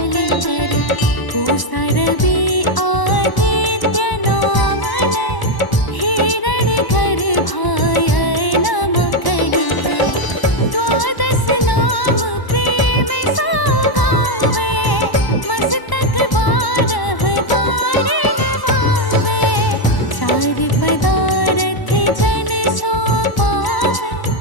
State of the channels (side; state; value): right; late; 1.0 ms